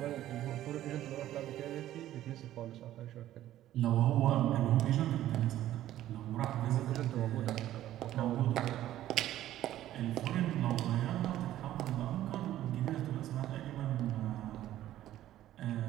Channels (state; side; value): quieter; left; 13.3 dB